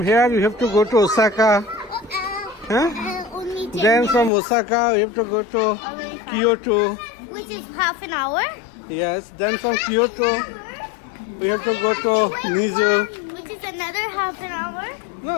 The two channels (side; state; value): right; drops out; at 4.3 s